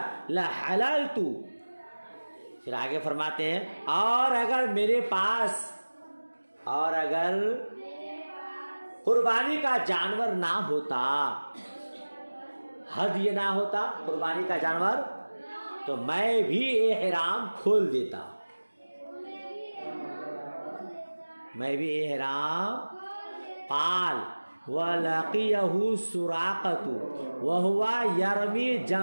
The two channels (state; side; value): inverted; both; correlation -1.00